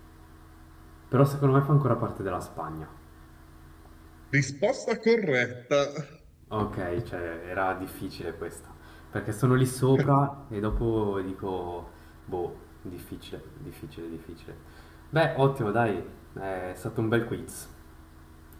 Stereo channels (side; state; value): both; identical; correlation 1.00